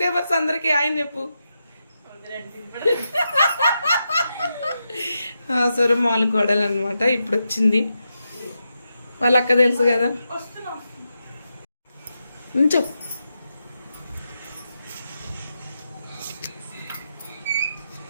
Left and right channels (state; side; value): inverted; both; correlation -0.87